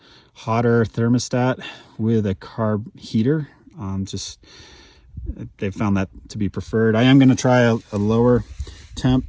hotter thermostat with a carb heater. They've found that to be preferred. I am going to try a lower temp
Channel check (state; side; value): identical; both; correlation 1.00